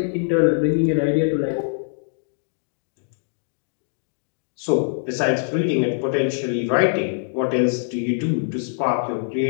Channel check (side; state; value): right; silent; digital silence